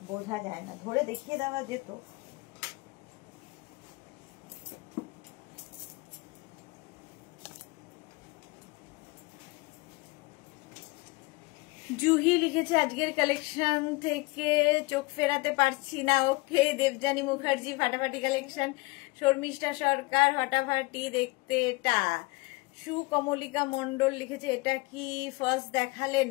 বোঝা যায় না, ধরে দেখিয়ে দেওয়া যেত। জুহি লিখেছে আজকের কালেকশন থেকে চোখ ফেরাতে পারছি না। ওকে। দেবজানী মুখার্জি ফাটাফাটি কালেকশন। শর্মিষ্ঠা সরকার ফাটাফাটি দেখতে। এটা সুকমলিকা মন্ডল লিখেছে এটা কি ফার্স্ট দেখালেন?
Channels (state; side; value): quieter; right; 24.0 dB